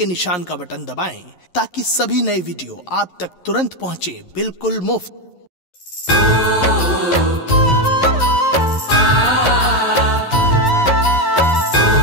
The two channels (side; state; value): right; late; 11 ms